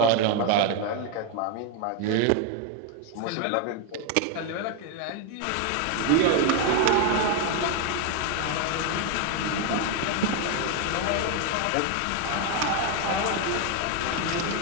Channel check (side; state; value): both; different; correlation 0.01